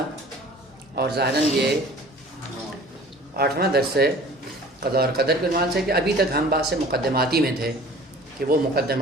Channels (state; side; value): normal; both; correlation 0.46